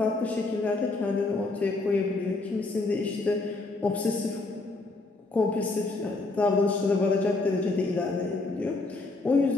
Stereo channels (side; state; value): right; quieter; 3.3 dB